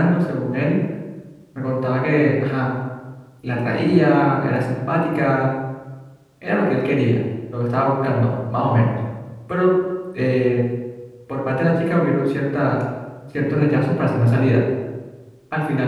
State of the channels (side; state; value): both; identical; correlation 1.00